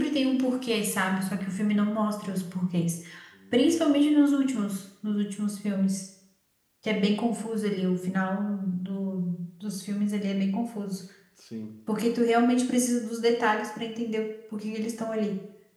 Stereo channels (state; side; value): identical; both; correlation 1.00